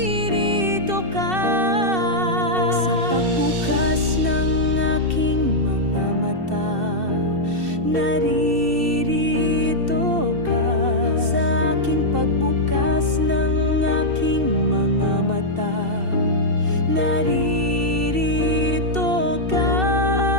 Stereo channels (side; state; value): left; late; 2.7 ms